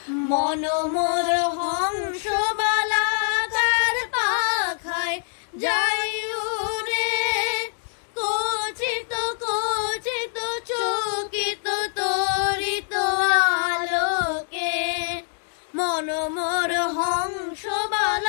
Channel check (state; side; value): silent; right; 58 dB below the other